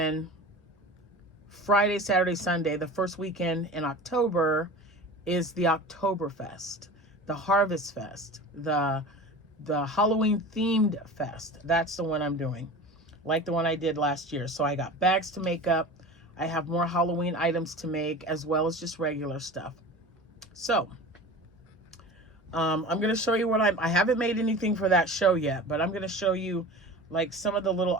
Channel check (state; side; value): normal; both; correlation 0.35